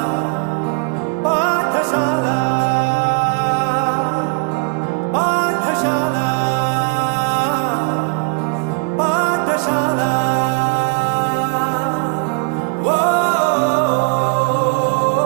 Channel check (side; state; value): left; quieter; 33.3 dB